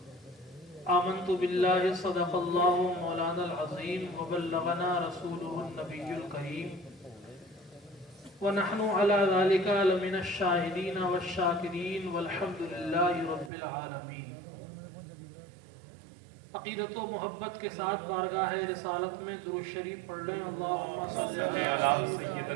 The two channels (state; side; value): drops out; left; at 13.5 s